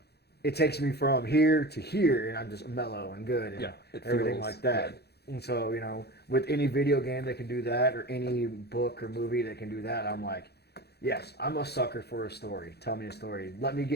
it takes me from here to here, and I'm just mellow and good and everything like that. Good. And so with any video game that can do that, or any book or movie that can do that, I'm like, yes, I'm a sucker for a story. Tell me a story. Let me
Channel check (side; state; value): right; late; 0.48 ms